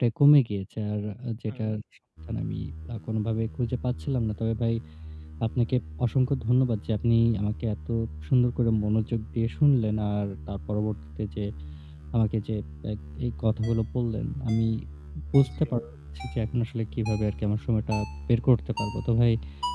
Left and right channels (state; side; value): identical; both; correlation 1.00